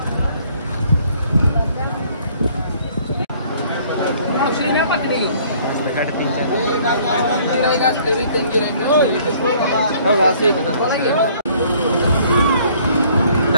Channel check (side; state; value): both; inverted; correlation -0.59